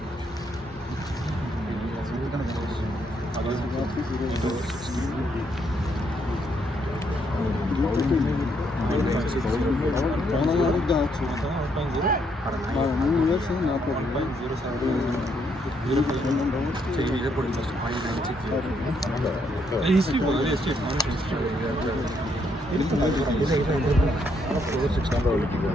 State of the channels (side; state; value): both; normal; correlation 0.74